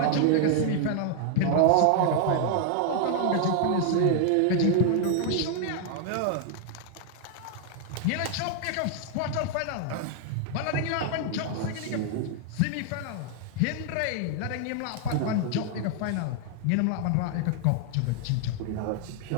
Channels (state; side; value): different; both; correlation 0.00